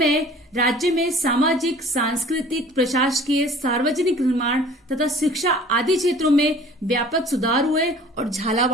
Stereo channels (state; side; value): normal; both; correlation 0.48